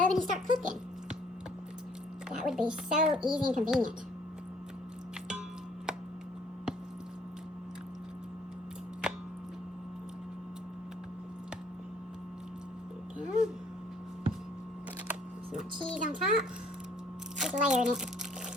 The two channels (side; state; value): both; normal; correlation 0.61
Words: and start cooking. That would be so easy and convenient. There we go. Some cheese on top. Just layering it.